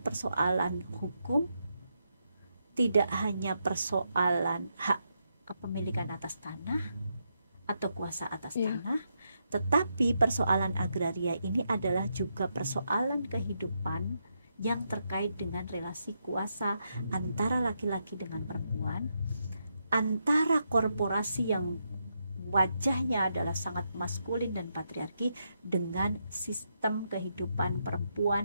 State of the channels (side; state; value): both; inverted; correlation -0.82